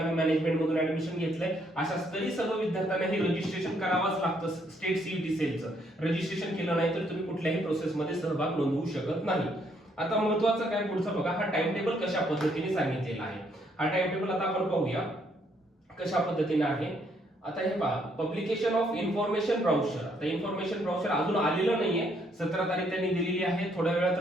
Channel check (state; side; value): normal; both; correlation 0.70